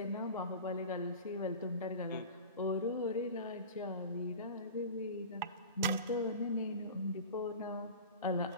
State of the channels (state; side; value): inverted; both; correlation -0.35